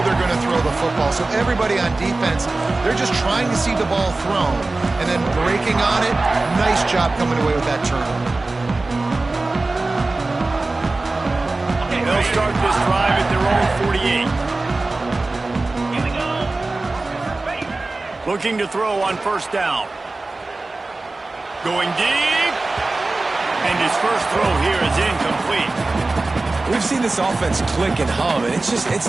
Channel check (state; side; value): quieter; left; 3.2 dB